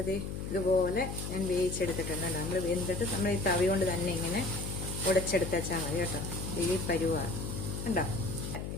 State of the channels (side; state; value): left; noise; hum, 5 dB below the sound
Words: ഇതുപോലെ ഞാൻ വേവിച്ചെടുത്തിട്ടുണ്ട്. നമ്മൾ വെന്തിട്ട് നമ്മൾ ഈ തവി കൊണ്ട് തന്നെ ഇങ്ങനെ ഉടച്ചെടുത്ത് വെച്ചാൽ മതി കേട്ടോ. ഈ പരുവാണ് കണ്ടോ.